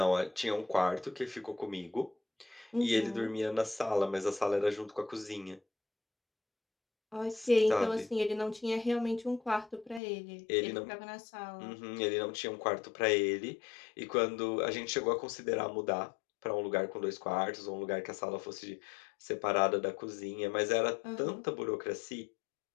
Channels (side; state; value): right; drops out; at 10.0 s